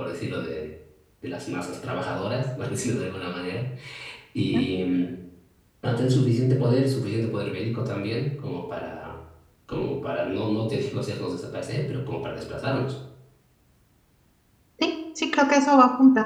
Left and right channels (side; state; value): both; identical; correlation 1.00